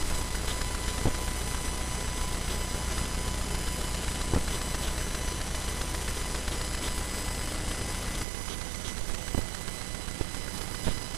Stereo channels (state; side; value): drops out; left; at 8.2 s